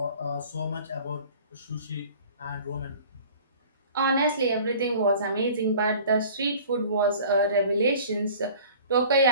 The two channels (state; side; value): inverted; both; correlation -0.46